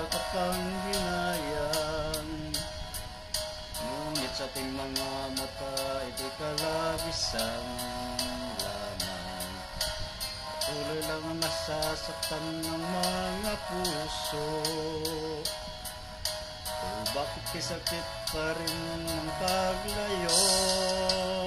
Ngunit sa ating mga mata ito'y kalabisan lamang. Patuloy lang ang nasasaktan ng mga puso. O bakit kisakit pa rin ang paglayo?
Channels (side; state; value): both; identical; correlation 1.00